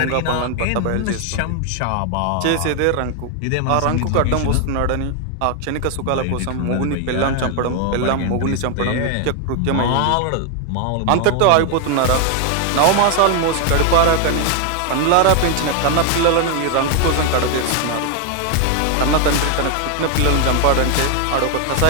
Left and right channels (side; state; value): both; different; correlation 0.01